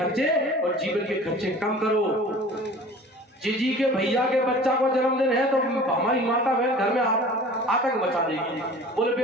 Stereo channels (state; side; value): normal; both; correlation 0.43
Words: और जीवन के खर्चे कम करो। जीजी के भैया के बच्चा को जन्मदिन है तो हमारी माता बहन घर में आतंक मचा देगी। बोले भाई